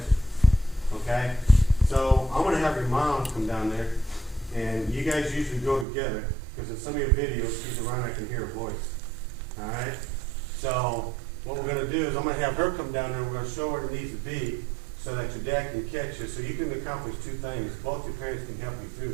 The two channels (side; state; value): left; drops out; at 5.9 s